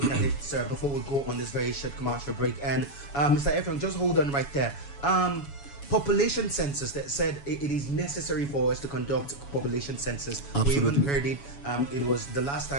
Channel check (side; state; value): right; late; 7.1 ms